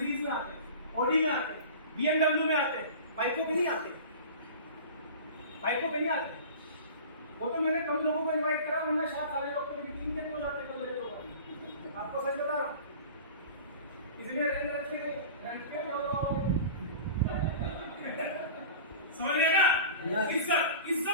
में आते हैं, ऑडी में आते हैं, BMW में आते हैं, बाइकों पे नहीं आते, बाइकों पे नहीं आते। वो तो मैंने कम लोगों को इनवाइट करा, वरना शायद सारे लोग तो मीटिंग के हो जाते हैं। मेरे लोग आपको सच बता रहा हूँ, इसलिए रेंट रखे रेंट पे समझ रहे ना? इज्जत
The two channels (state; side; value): inverted; both; correlation -0.37